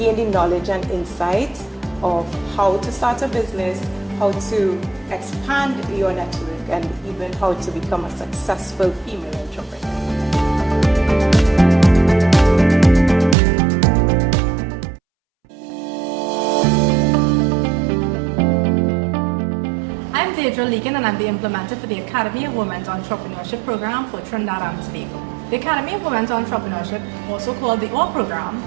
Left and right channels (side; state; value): left; drops out; at 13.4 s